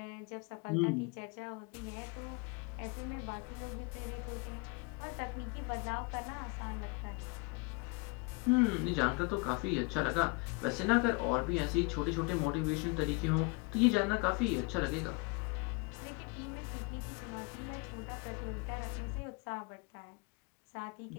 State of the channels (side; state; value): right; quieter; 30.2 dB